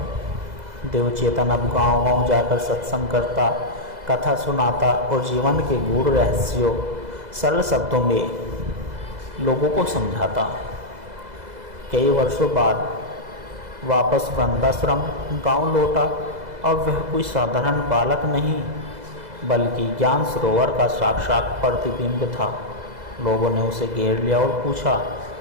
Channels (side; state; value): left; late; 2.0 ms